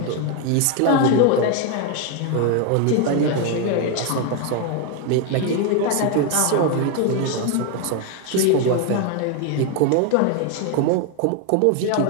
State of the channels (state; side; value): different; both; correlation 0.01